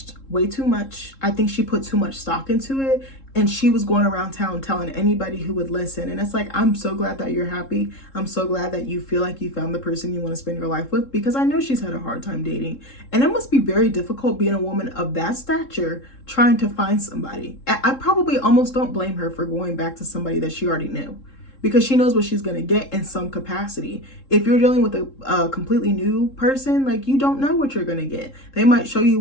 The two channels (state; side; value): late; right; 3.7 ms